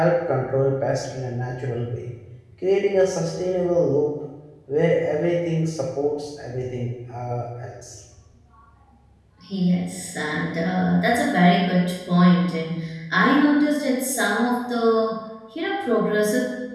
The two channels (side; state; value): both; identical; correlation 1.00